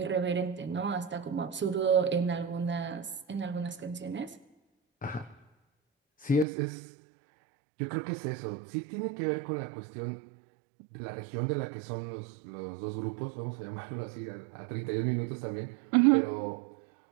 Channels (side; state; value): left; drops out; at 6.5 s